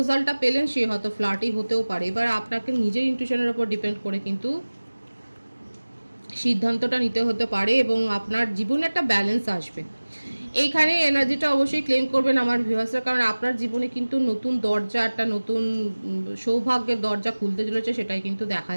পেলেন সে হয়তো ফ্ল্যাটি হতেও পারে, এবার আপনাকে নিজের ইনটিউশনের উপর ডিপেন্ড করে কিন্তু সিদ্ধান্তটা নিতে হতে পারে এবং আপনার জীবনে একটা ব্যালেন্স আসবে। এইখানে এনার্জিটা অবশ্যই ক্লেম করবেন আমার ভিউয়ার্সরা, কারণ আপনার জীবনে কিন্তু নতুন দরজা, একটা নতুন সৌভাগ্যের দরজা খুলতে চলেছে, সেটাই কিন্তু দেখা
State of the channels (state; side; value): inverted; both; correlation -1.00